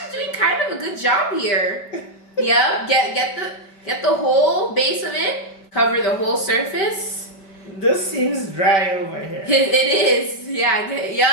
doing kind of a good job here. Yep, get the whole base of it. Cover the whole surface. This seems dry over here. It is. Yeah,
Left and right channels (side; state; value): right; late; 5.1 ms